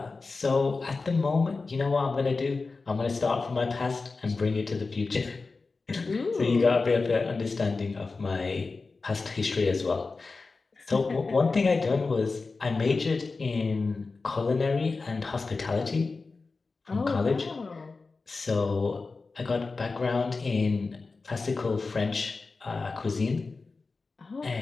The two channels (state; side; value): quieter; right; 4.0 dB